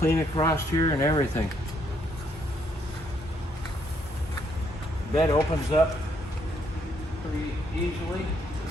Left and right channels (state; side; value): normal; both; correlation 0.71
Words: across here and everything. The bed opens up pretty easily.